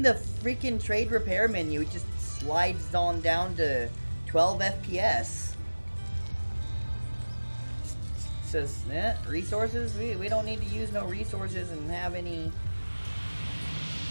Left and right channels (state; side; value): inverted; both; correlation -1.00